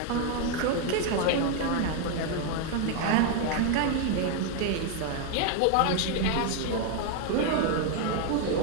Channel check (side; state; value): both; different; correlation 0.01